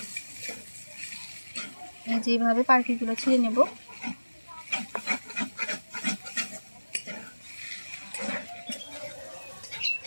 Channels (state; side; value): inverted; both; correlation -1.00